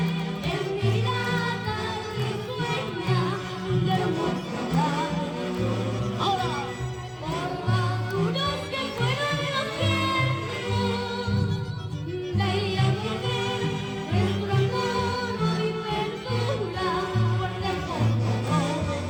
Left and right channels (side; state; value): both; identical; correlation 1.00